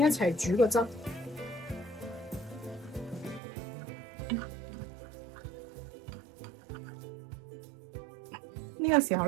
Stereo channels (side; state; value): left; drops out; at 3.4 s